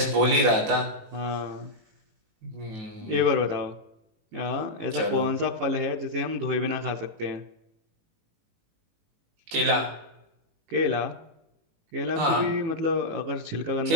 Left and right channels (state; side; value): late; left; 18 ms